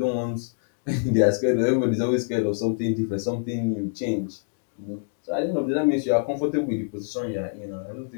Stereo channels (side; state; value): right; silent; digital silence